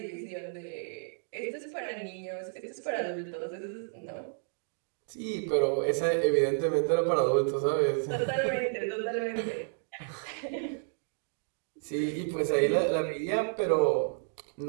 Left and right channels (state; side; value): silent; left; digital silence